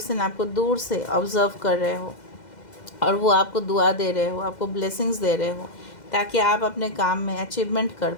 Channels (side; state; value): right; late; 2.0 ms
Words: आपको दूर से ऑब्ज़र्व कर रहे हो और वो आपको दुआ दे रहे हो, आपको ब्लेसिंग्स दे रहे हो ताकि आप अपने काम में अचीवमेंट कर